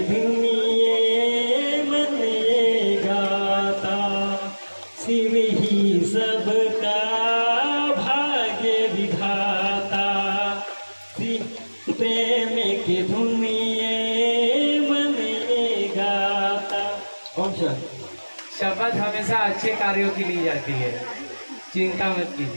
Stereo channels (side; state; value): both; inverted; correlation -1.00